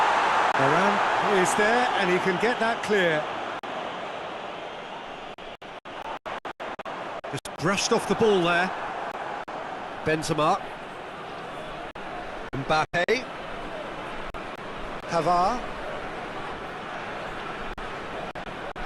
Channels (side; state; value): both; identical; correlation 1.00